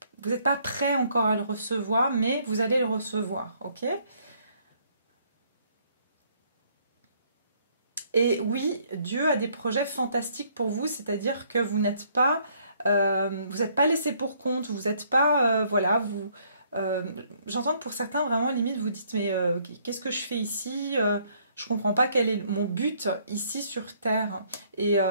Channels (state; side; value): inverted; both; correlation -0.66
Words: Vous n'êtes pas prêt encore à le recevoir, mais vous allez le recevoir, ok ? Et oui, Dieu a des projets fantastiques pour vous, c'est-à-dire que vous n'êtes pas laissé pour compte, vous n'êtes pas, voilà, j'entends que pour certains, vraiment, limite, vous dites, mais qu'est-ce que je fais ici je comprends pas quel est mon but ici sur Terre. Et